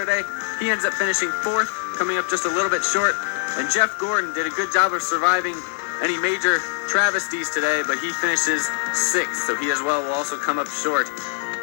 He ends up finishing fourth, coming up just a little bit short. And Jeff Gordon did a good job of surviving any major travesties today, but he finishes sixth, so he as well will also come up short.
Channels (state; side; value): silent; right; 59 dB below the other